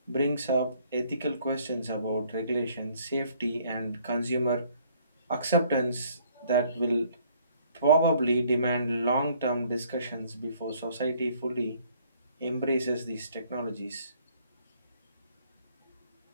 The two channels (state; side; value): inverted; both; correlation -0.62